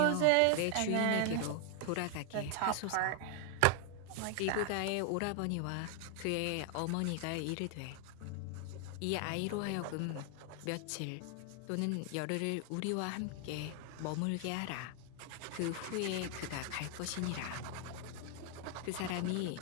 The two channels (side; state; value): both; different; correlation 0.00